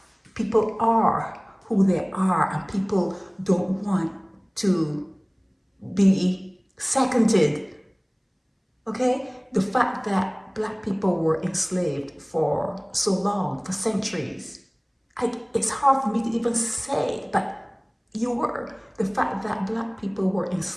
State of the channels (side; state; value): both; identical; correlation 1.00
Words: People are who they are, and people don't want to be seconded. Okay? The fact that black people were enslaved for so long, for centuries, it's hard for me to even say, but you were. The fact that black people were